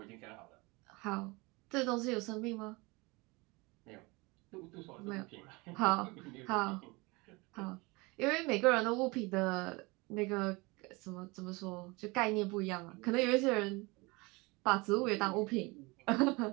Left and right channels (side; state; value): left; quieter; 25.2 dB